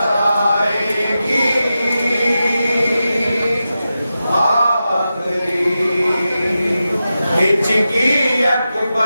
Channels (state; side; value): inverted; both; correlation -0.91